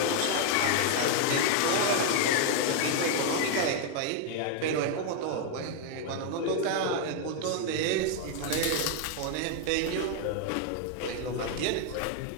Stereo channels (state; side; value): different; both; correlation 0.00